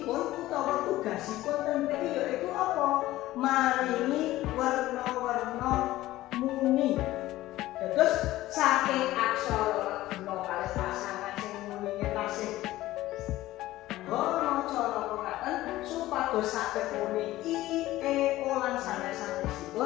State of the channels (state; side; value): quieter; right; 16.1 dB